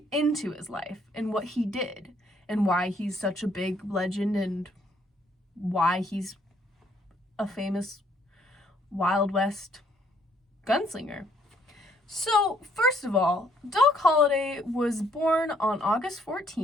into his life and what he did and why he's such a big legend and why he's a famous Wild West gunslinger. So, first of all, Doc Holliday was born on August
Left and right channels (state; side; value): normal; both; correlation 0.66